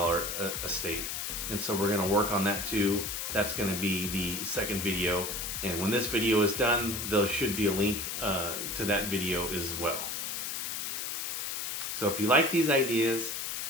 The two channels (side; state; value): left; noise; hiss, 3 dB below the sound